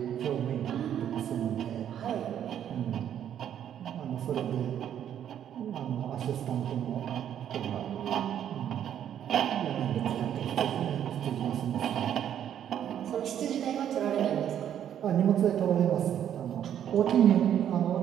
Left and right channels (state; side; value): quieter; left; 9.9 dB